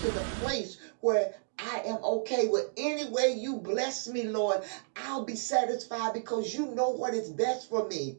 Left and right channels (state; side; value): silent; left; digital silence